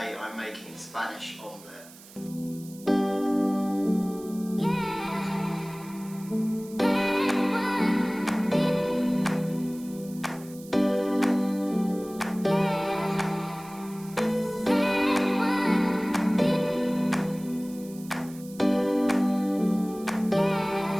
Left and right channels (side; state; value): right; noise; hiss, 20 dB below the sound